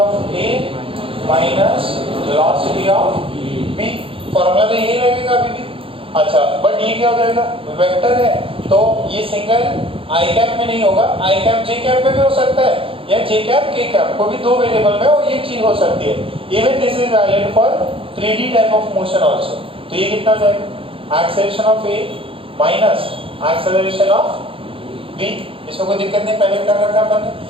A minus velocity of B. Formula तो यही लगेगा अभी भी। अच्छा बट ये क्या हो जाएगा? वेक्टर है तो ये सिंगल आई कैप में नहीं होगा, आई कैप जे कैप में भी हो सकता है या जे कैप के कैप को भी 2 वेरिएबल में और ये चीज हो सकती है। Even this is valid for 3D type of motion also. तो ये कितना हो जाएगा? Acceleration of A minus acceleration of B. इसमें कोई दिक्कत नहीं, पहले कर रखा अपन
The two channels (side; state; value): left; late; 0.26 ms